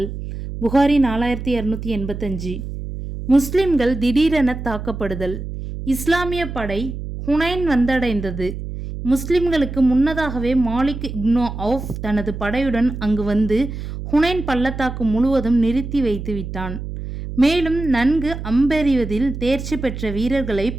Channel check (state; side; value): noise; right; hum, 8 dB below the sound